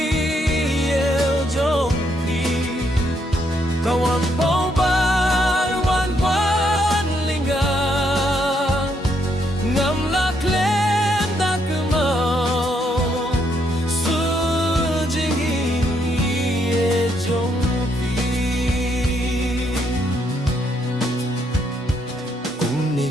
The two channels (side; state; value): both; normal; correlation 0.74